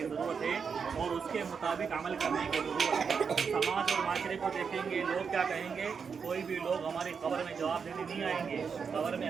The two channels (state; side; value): quieter; left; 6.1 dB